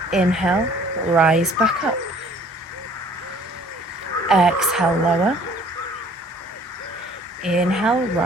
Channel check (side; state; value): both; normal; correlation 0.54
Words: Inhale, rise back up. Exhale, lower. Inhale,